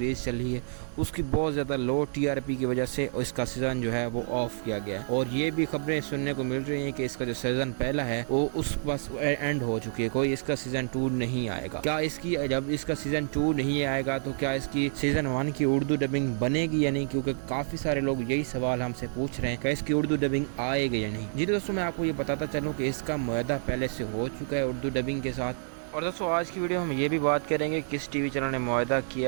चली है उसकी बहुत ज़्यादा लो TRP की वजह से इसका सीज़न जो है वो ऑफ किया गया है। और ये भी खबरें सुनने को मिल रही हैं कि इसका जो सीज़न पहला है वो उस बस एंड हो चुकी है, कोई इसका सीज़न 2 नहीं आएगा। क्या इसकी जब इसका सीज़न 2 नहीं आएगा तो क्या इसकी सीज़न 1 की उर्दू डबिंग बनेगी या नहीं, क्योंकि काफ़ी सारे लोग यही सवाल हमसे पूछ रहे हैं कि इसकी उर्दू डबिंग आएगी या नहीं। जी दोस्तों, मैं आपको ये बताता चलूँ कि इसका मुआहदा पहले से हो चुका है उर्दू डबिंग के साथ। और दोस्तों, आज की वीडियो हम ये भी बात करेंगे किस टीवी चैनल ने मुआहदा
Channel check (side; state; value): left; silent; digital silence